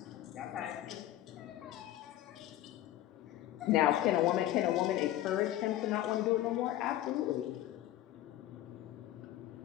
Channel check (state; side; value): quieter; right; 13.8 dB